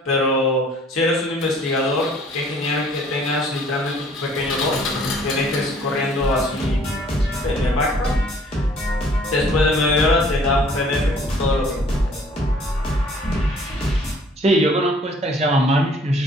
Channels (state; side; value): normal; both; correlation 0.56